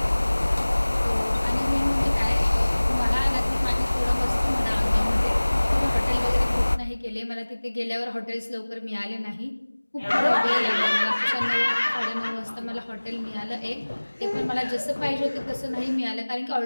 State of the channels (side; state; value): both; inverted; correlation -1.00